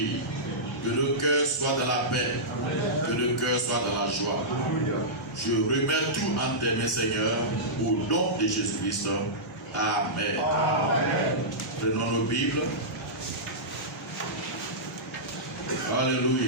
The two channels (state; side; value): normal; both; correlation -0.14